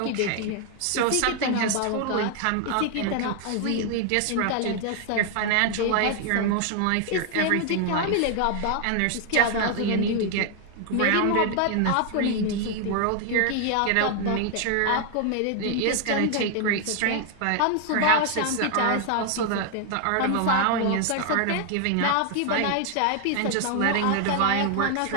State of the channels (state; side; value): different; both; correlation 0.00